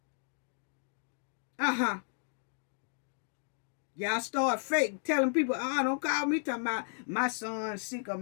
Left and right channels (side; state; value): right; silent; digital silence